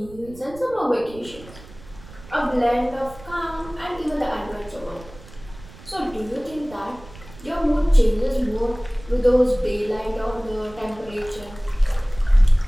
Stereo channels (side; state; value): right; noise; rumble, 19 dB below the sound